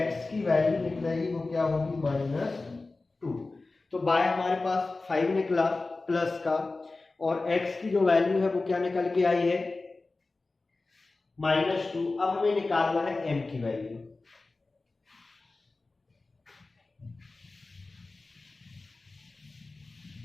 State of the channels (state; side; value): quieter; right; 3.5 dB